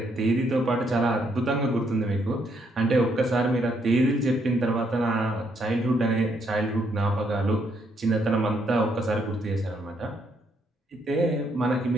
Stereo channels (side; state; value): both; normal; correlation 0.73